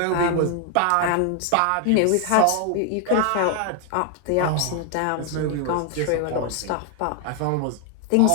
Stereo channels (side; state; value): both; different; correlation 0.00